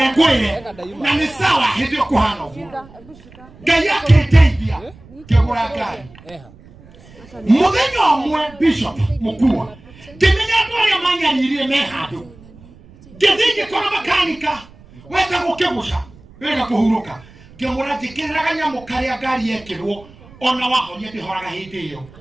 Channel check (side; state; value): right; noise; rumble, 23 dB below the sound